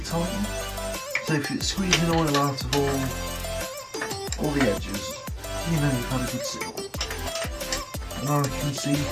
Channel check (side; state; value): both; identical; correlation 1.00